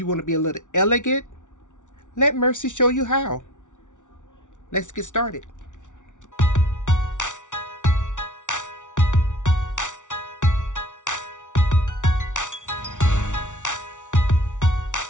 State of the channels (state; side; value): late; right; 0.86 ms